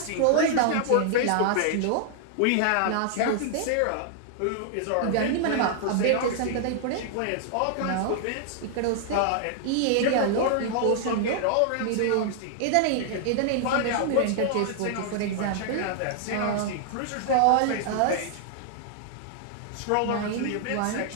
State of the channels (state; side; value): different; both; correlation -0.01